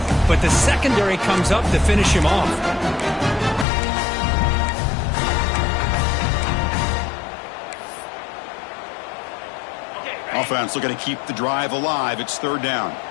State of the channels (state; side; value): drops out; right; at 3.7 s